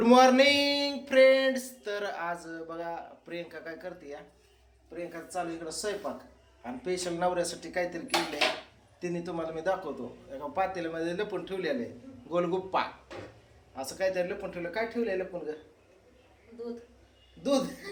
morning friends. तर आज बघा प्रियंका काय करते या. प्रियंका चालू इकडं स्वयंपाक आणि स्पेशल नवऱ्यासाठी काहीतरी केलंय. तिने तुम्हाला मी दाखवतो. एका पातेल्यामध्ये लपून ठेवलेलं आहे गोलगुप्पा. असं काहीतरी लपून ठेवलं. काय ठेवलंय लपून ग? दूध.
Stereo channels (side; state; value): both; identical; correlation 1.00